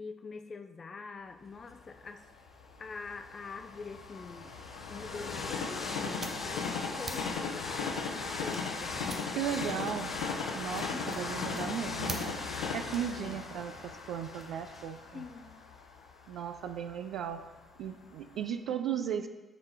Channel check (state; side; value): normal; both; correlation 0.49